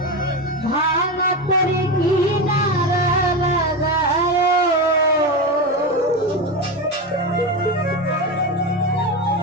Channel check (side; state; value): both; normal; correlation 0.18